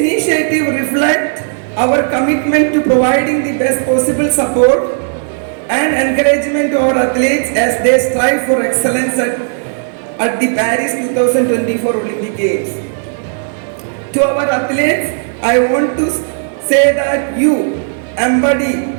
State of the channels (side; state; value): left; silent; digital silence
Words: reflect our commitment to providing the best possible support and encouragement to our athletes as they strive for excellence at the Paris 2024 Olympic Games. To our athletes, I want to say that you